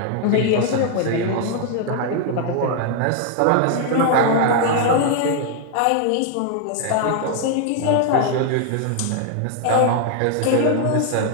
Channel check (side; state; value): both; different; correlation 0.00